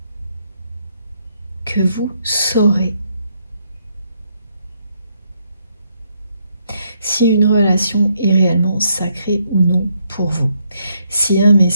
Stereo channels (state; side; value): inverted; both; correlation -0.75